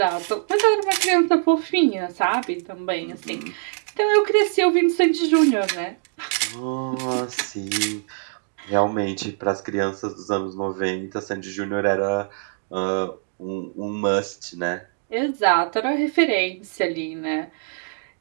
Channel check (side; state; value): left; silent; digital silence